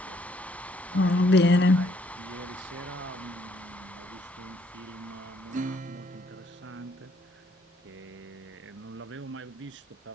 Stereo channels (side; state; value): both; normal; correlation 0.67